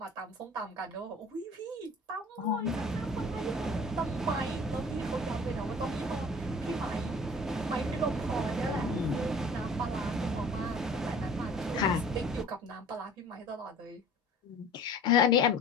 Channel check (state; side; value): normal; both; correlation 0.47